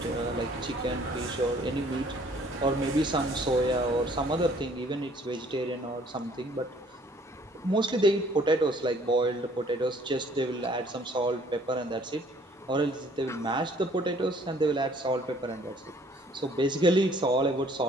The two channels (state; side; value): normal; both; correlation 0.58